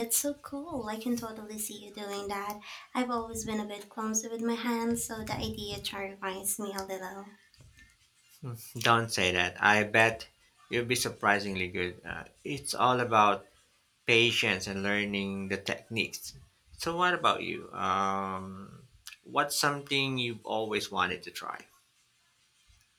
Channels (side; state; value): both; identical; correlation 1.00